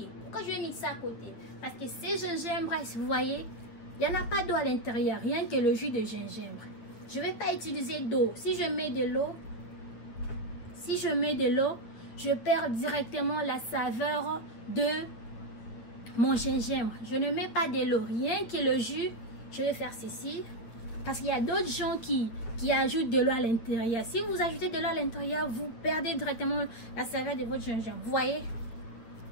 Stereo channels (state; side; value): late; right; 9.3 ms